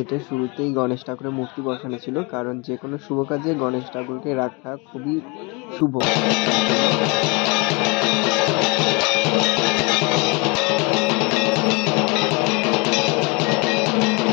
শুরুতেই গণেশ ঠাকুরের মূর্তি বসানো ছিল, কারণ যে কোনো শুভ কাজে গণেশ ঠাকুরকে রাখা খুবই শুভ।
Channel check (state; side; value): quieter; right; 29.2 dB